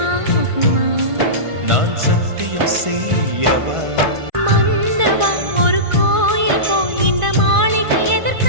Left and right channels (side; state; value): left; late; 1.5 ms